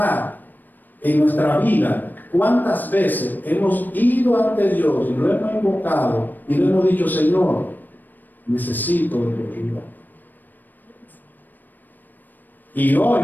en nuestra vida cuántas veces hemos ido ante Dios y lo hemos invocado y le hemos dicho: Señor, necesito de tu ayuda. Y hoy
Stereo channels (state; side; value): late; right; 0.089 ms